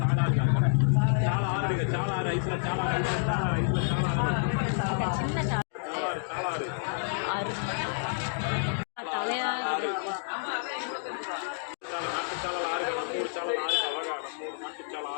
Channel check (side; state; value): right; silent; digital silence